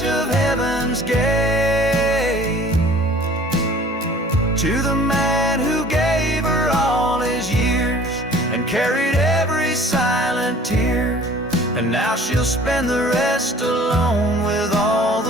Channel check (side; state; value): both; normal; correlation 0.50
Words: of heaven's gate, to the man who gave her all his years and carried every sign Now she'll spend the rest alone with all